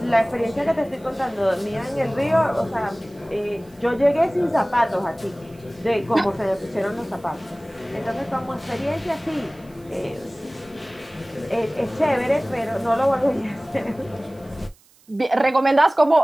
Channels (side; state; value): right; noise; hiss, 30 dB below the sound